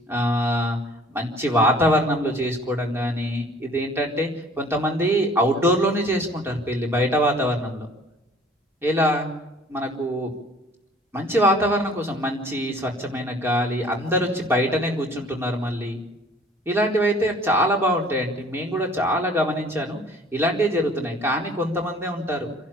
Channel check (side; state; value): both; normal; correlation 0.52